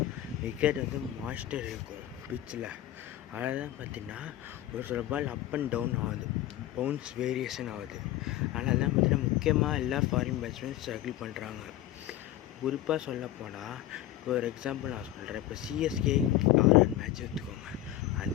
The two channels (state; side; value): quieter; right; 13.7 dB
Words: விக்கெட் மாஸ்டர் இருக்கும் பிட்சில். அதனால் பார்த்தீங்கன்னா ஒரு சில பால் அப் அண்ட் டவுன் ஆகுது, பவுன்ஸ் வேரியேஷன் ஆகுது. அதனால தான் பார்த்தீங்கன்னா முக்கியமாக எல்லா ஃபாரின் பேட்ஸ்மேன் ஸ்ட்ரகிள் பண்ணுறாங்க. குறிப்பாக சொல்லப்போனால் இப்போ ஒரு எக்ஸாம்பிள் நான் சொல்கிறேன். இப்போ சிஎஸ்கே ஆர்ஆர் மேட்ச் எடுத்துக்கோங்க.